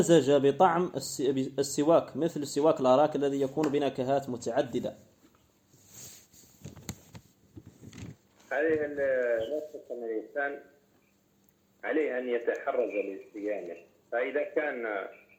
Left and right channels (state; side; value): identical; both; correlation 1.00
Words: بطعم السواك مثل السواك الأراك الذي يكون بنكهات متعددة؟ هذه النقطة أن الإنسان عليه أن يتحرز لصيامه. فإذا كان